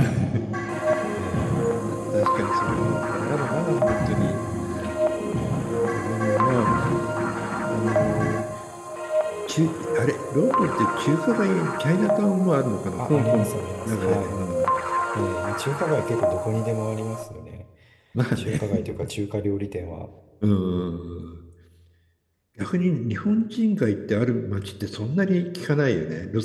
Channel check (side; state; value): both; identical; correlation 1.00